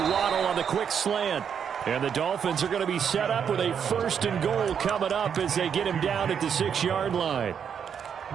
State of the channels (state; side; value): quieter; left; 7.6 dB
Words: on the quick slant. And the Dolphins are going to be set up with a 1st and goal coming up as they get him down at the 6-yard line.